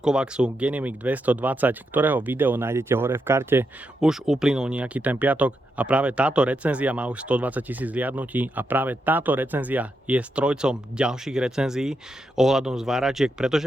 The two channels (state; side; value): normal; both; correlation 0.83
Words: Genetic 220, ktorého video nájdete hore v karte, už uplynul nejaký ten piatok a práve táto recenzia má už 120 000 zliadnutí a práve táto recenzia je strojcom ďalších recenzií ohľadom zváračiek,